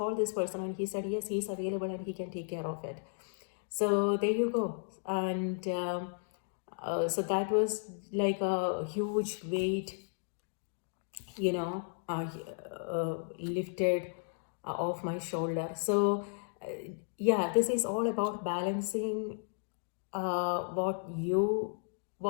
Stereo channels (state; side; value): silent; right; digital silence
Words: this person, and he said yes, he's available and he can take care of it. So there you go. And so that was like a huge weight, lifted off my shoulder. So yeah, this is all about balancing what you